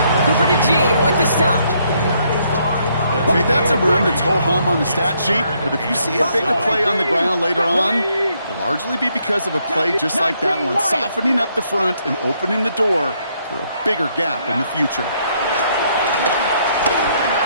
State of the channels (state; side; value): inverted; both; correlation -0.72